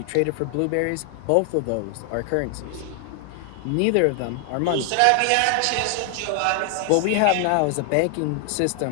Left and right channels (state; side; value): different; both; correlation 0.00